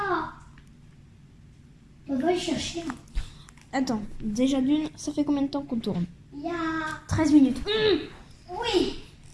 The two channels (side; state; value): both; identical; correlation 1.00